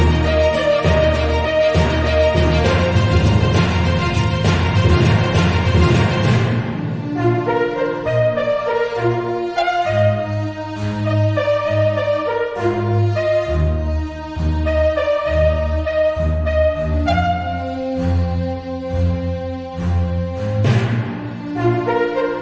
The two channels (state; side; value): identical; both; correlation 1.00